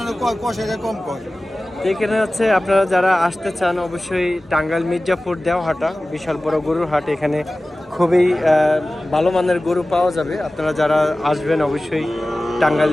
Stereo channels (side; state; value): both; normal; correlation 0.97